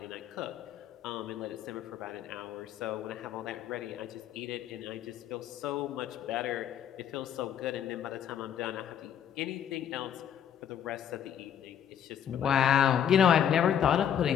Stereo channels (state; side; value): quieter; right; 9.2 dB